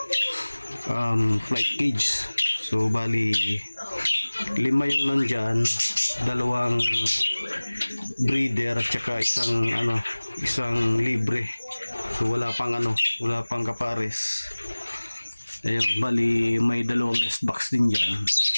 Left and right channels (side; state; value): both; inverted; correlation -1.00